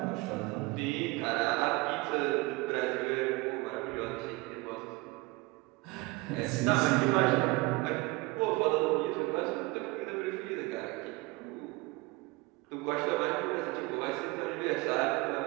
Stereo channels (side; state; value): left; quieter; 23.2 dB